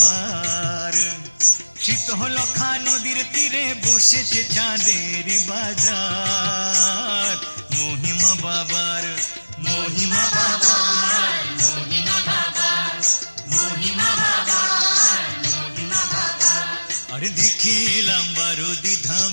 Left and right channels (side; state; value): both; inverted; correlation -1.00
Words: শীতলক্ষা নদীর তীরে বসেছে চাঁদের বাজার মহিমা বাবার। মহিমা বাবার মহিমা বাবার মহিমা বাবার মহিমা বাবার। আর দেখে এলাম বারোদি